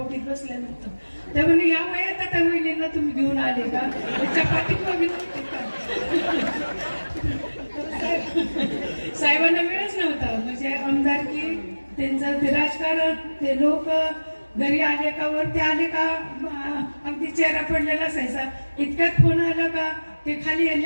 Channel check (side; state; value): both; inverted; correlation -1.00